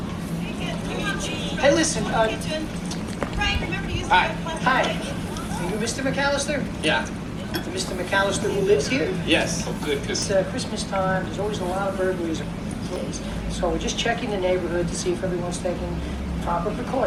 Hey, listen, Hi. Hi. Are you Mr. McAllister? Yeah. Mr. McAllister who lives here? Yes. Oh, good, because It's Christmas time. There's always a lot of burglaries. So we're just checking the neighborhood to see if everyone's taking proper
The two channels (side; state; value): both; identical; correlation 1.00